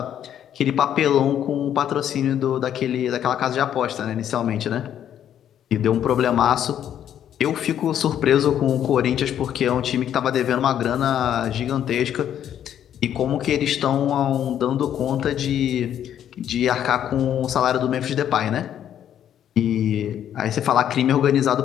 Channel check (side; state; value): right; quieter; 10.1 dB